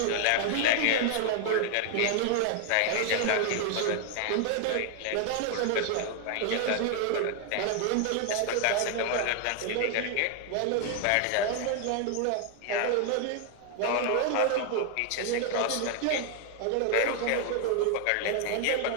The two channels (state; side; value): different; both; correlation 0.00